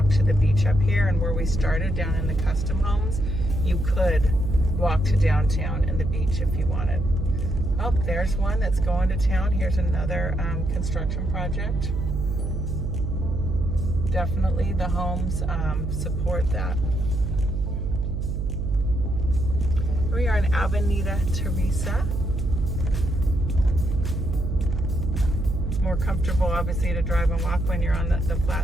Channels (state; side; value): noise; right; hum, 1 dB below the sound